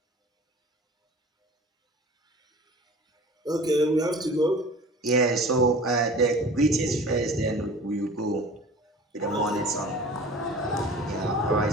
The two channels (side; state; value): both; normal; correlation 0.42